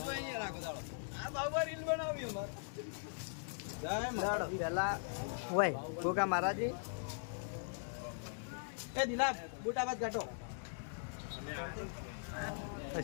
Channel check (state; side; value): silent; right; digital silence